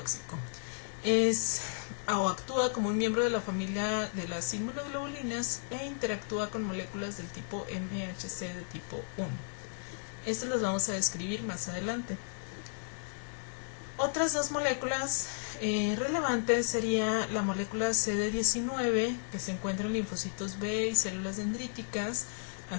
Actúa como un miembro de la familia de las inmunoglobulinas e interactúa con moléculas del tipo MHC de tipo 1. Estas las vamos a describir más adelante. Otras dos moléculas relevantes sería la molécula CD19, que se encuentra en linfocitos B y células dendríticas,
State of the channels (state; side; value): silent; right; digital silence